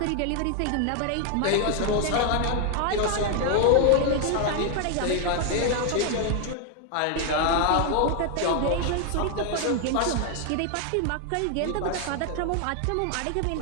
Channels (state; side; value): different; both; correlation 0.00